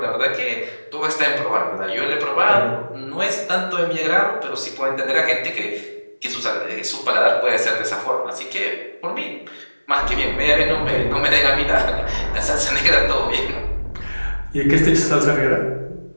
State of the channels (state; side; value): inverted; both; correlation -1.00